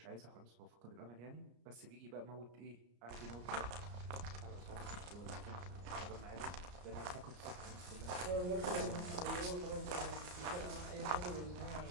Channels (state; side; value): late; left; 34 ms